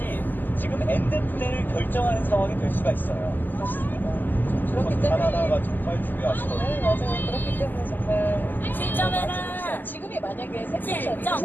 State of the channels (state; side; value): late; right; 0.088 ms